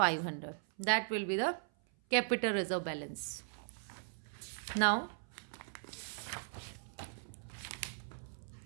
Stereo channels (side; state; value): left; silent; 52 dB below the other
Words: that will be the capital reserve balance. Now